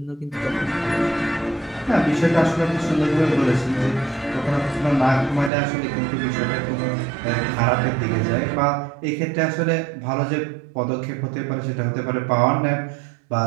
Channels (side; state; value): left; drops out; at 5.5 s